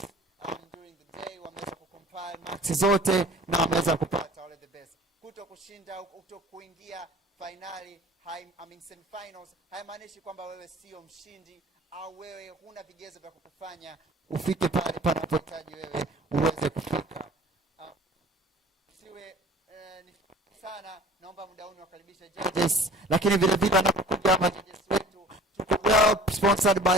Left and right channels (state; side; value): normal; both; correlation 0.47